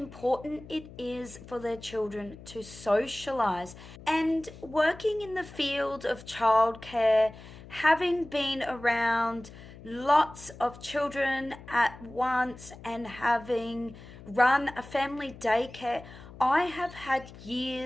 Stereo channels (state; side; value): noise; left; hum, 17 dB below the sound